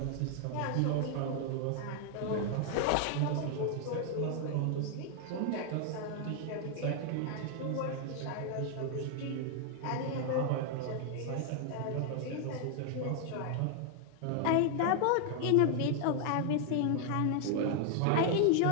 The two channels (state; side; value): different; both; correlation 0.00